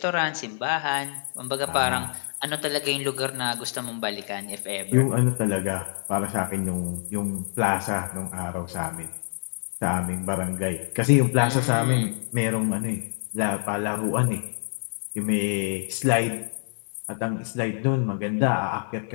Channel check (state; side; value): silent; right; 61 dB below the other